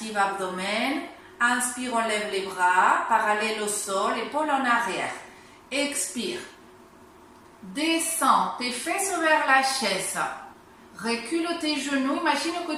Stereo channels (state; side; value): identical; both; correlation 1.00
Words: abdomen. Inspire, on lève les bras, parallèle au sol, épaule en arrière. Expire. Descends tes fesses vers la chaise. Recule tes genoux. Imagine